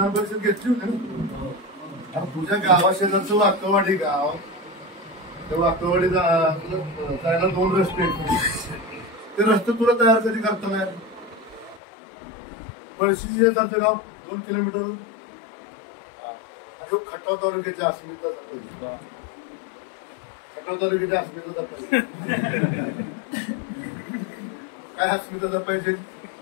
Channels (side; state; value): right; drops out; at 11.8 s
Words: परिषद घेतली होती ना. आता तुझ्या गावाशेजारचं वाकवाडी गाव, त्या वाकवाडी जायला 2 रस्ते आहेत. ते रस्ते तुला तयार कधी करता नाही. पळशी शेजारचं गाव 2 किलोमीटर आणि खटाव तालुक्याच्या अस्मिता जपायची. खटाव तालुक्याच्या अस्मिता जपायची. काय अस्मिता जपायची?